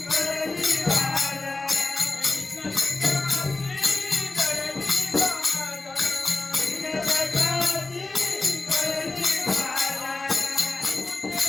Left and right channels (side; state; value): right; quieter; 3.3 dB